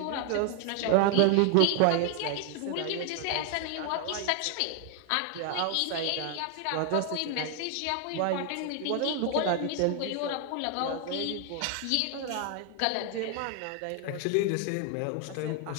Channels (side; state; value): both; different; correlation 0.00